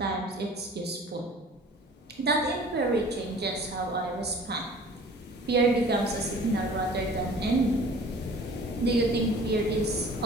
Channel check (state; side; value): normal; both; correlation 0.47